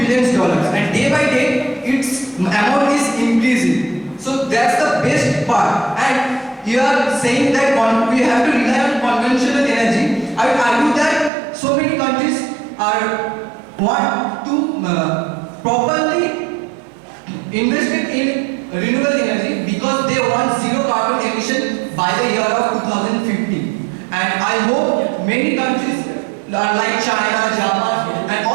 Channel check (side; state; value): left; drops out; at 11.3 s